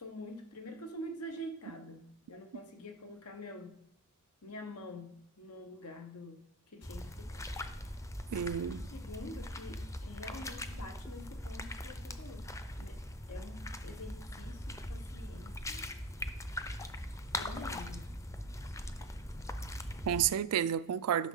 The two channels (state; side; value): quieter; left; 3.4 dB